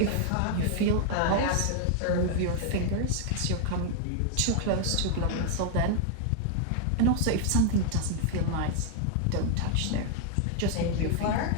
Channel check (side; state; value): both; different; correlation 0.00